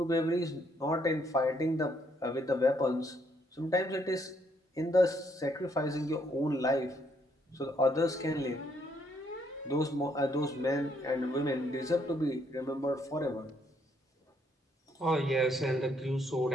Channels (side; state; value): both; normal; correlation 0.71